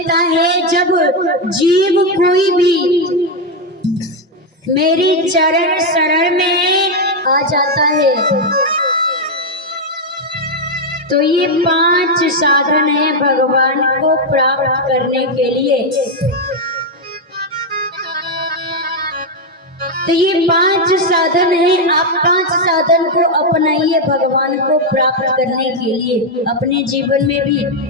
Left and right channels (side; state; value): both; normal; correlation 0.04